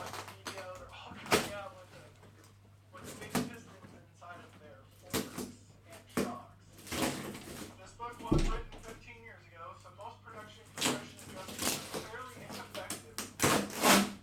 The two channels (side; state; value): both; identical; correlation 1.00